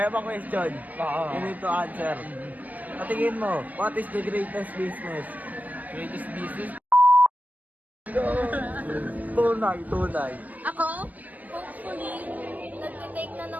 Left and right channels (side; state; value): left; late; 0.080 ms